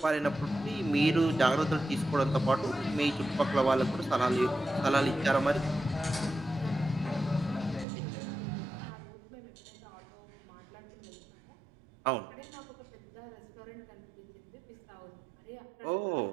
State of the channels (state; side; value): drops out; left; at 7.9 s